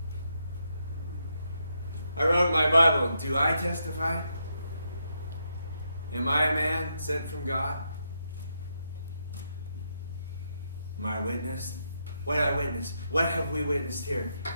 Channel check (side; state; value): both; inverted; correlation -0.80